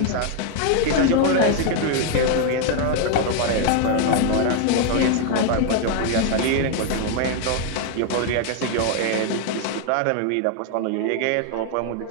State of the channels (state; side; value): different; both; correlation 0.00